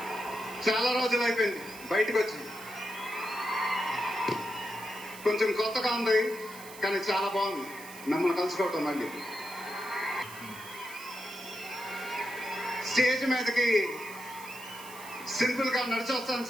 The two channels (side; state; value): right; noise; hiss, 16 dB below the sound